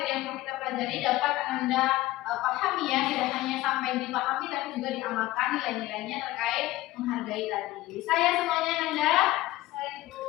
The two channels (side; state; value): right; quieter; 17.4 dB